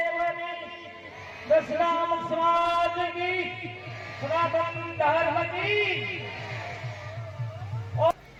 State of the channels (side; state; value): both; identical; correlation 1.00